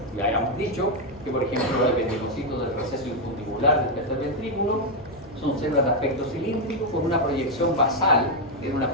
Ya habíamos dicho que, por ejemplo, los ependimocitos del receso infundibular del tercer ventrículo son células de aspecto cilíndrico con una proyección basal, tiene una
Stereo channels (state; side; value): normal; both; correlation 0.01